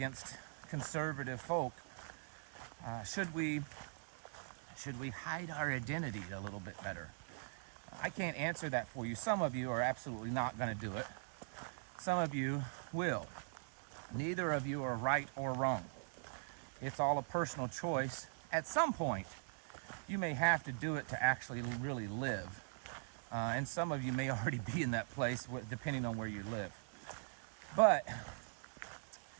conservative folk. Should we hide our identity a little bit better? I can't answer that for you. Some of you are absolutely not going to do it. Some of you will. Neither of you are right or wrong. It's all a personal choice. At some point, you may have to do it to actually really live. And some of you may already be in that place, depending on where you live. But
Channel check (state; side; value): silent; left; digital silence